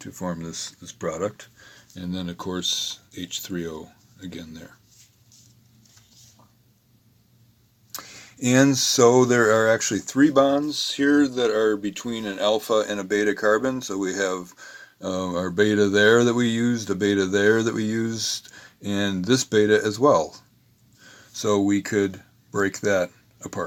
form this product. And then, of course, H3O again there. And so there are actually 3 bonds here that are between an alpha and a beta carbon. So we have our beta there that we used, a beta there that we used, and this beta as well. So we could break that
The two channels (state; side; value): identical; both; correlation 1.00